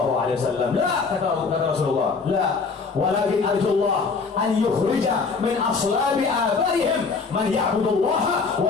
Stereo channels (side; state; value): right; quieter; 4.7 dB